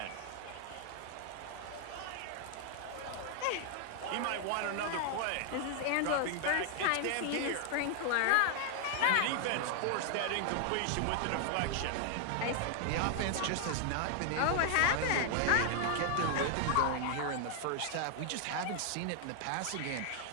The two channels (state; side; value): different; both; correlation 0.00